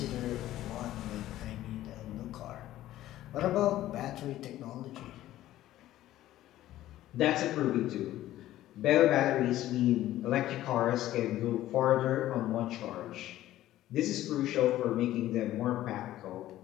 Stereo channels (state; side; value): quieter; right; 14.2 dB